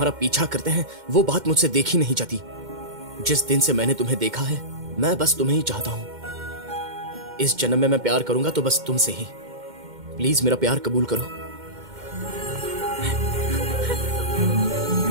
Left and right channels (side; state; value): left; late; 2.1 ms